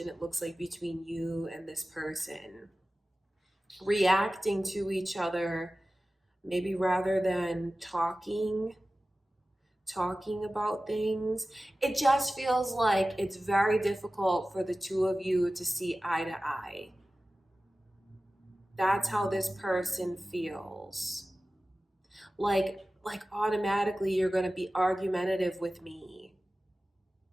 it looks like, between you and this person. Reacting to each other, maybe rather than talking about things. It just feels like it's very difficult for the two of you to see eye to eye. That's how this person feels. Like automatically you're going to be argumentative with me.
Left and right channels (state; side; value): normal; both; correlation 0.96